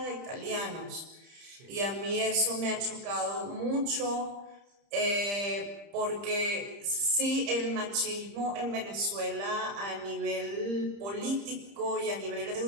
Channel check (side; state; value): left; late; 30 ms